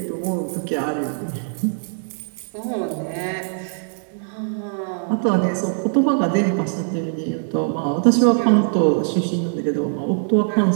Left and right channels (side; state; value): left; silent; digital silence